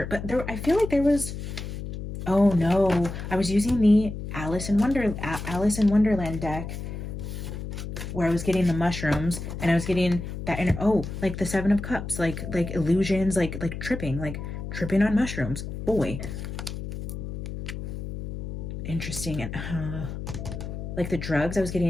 but I feel like there was, oh no, I was using the Alice in Wonderland deck where I was getting the mushrooms, and I was getting that, and like the 7 of Cups, like illusions, like tripping on mushrooms. Boy, interesting. And like the drugs, I was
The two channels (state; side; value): noise; left; hum, 7 dB below the sound